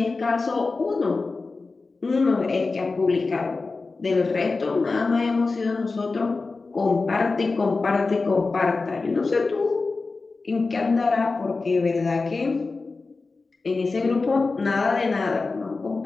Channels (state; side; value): quieter; right; 3.9 dB